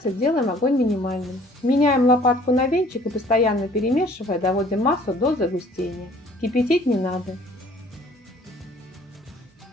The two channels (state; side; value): normal; both; correlation 0.55